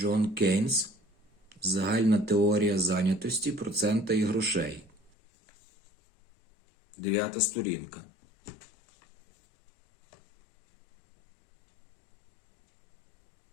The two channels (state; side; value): drops out; right; at 5.1 s